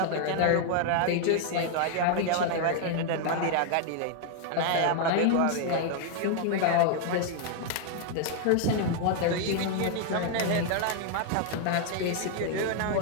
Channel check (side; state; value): both; different; correlation 0.00